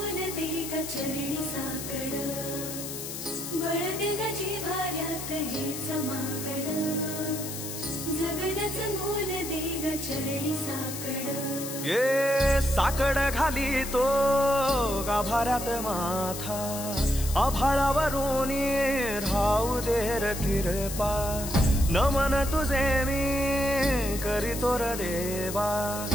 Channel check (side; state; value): left; noise; hiss, 8 dB below the sound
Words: दे ग चरणी साकड, बळ दे ग जिव्हाऱ्यात हेच मागण, जगण्याचं मोल दे ग चरणी साकड. ये साकड घाली तो गाभाऱ्यात माथा, आभाळावरून राहू दे र कृपा. नमन तुझे मी करीतो र देवा,